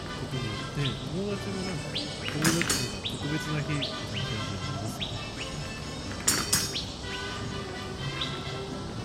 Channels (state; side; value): identical; both; correlation 1.00